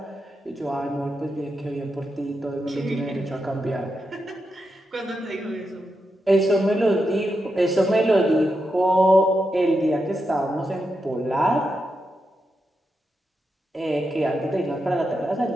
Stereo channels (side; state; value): both; normal; correlation 0.86